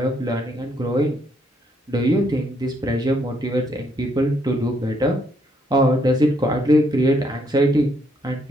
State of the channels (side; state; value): both; normal; correlation 0.72